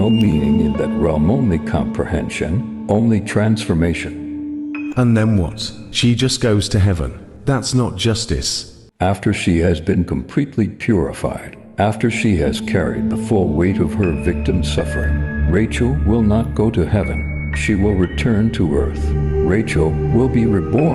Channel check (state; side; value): identical; both; correlation 1.00